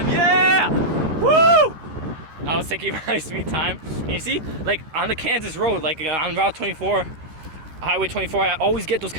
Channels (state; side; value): late; left; 13 ms